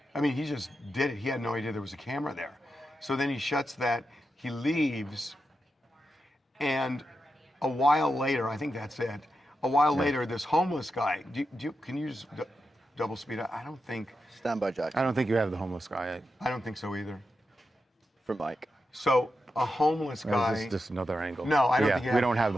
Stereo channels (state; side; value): normal; both; correlation 0.88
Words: I mean, he just did it. He had no idea there was a camera there. So then he shuts that, he leaves, and a while later, I think that's it. A while later, this homeless guy, can you just double speed up? I don't think Stand by, Jack. I don't think you have the homeless guy. I don't think so either. from Mike. So a homeless Or guy. is this just another angle? No, I don't Yeah, think you we don't have